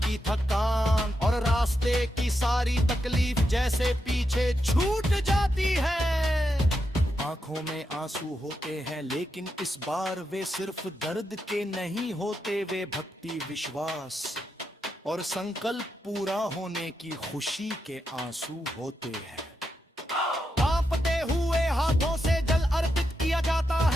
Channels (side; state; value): both; normal; correlation 0.85